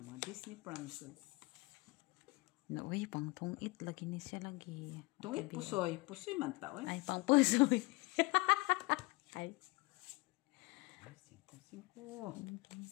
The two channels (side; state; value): right; quieter; 24.6 dB